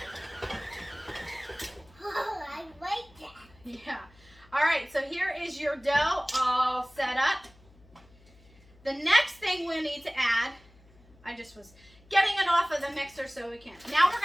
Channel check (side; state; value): left; noise; hum, 27 dB below the sound